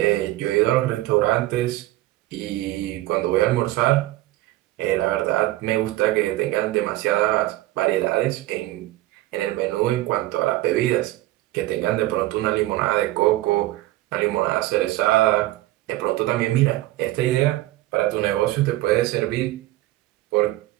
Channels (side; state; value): left; quieter; 16.8 dB